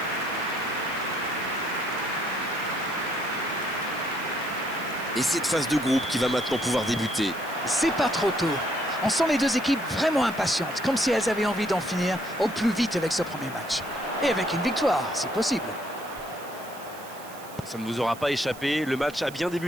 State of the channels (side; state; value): right; noise; hiss, 18 dB below the sound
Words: Et cette phase de groupe qui va maintenant pouvoir débuter. C'est pas trop tôt. On sent les deux équipes vraiment impatientes, comme si elles avaient envie d'en finir au plus vite avec ce premier match. Et avec une victoire, si possible. Ça ne vous aura pas échappé, le match a bien